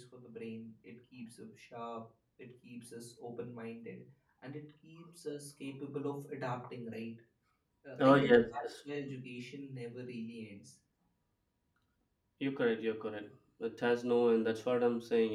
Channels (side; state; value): both; identical; correlation 1.00